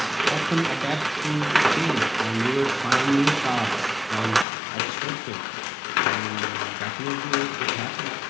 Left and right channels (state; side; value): drops out; right; at 4.5 s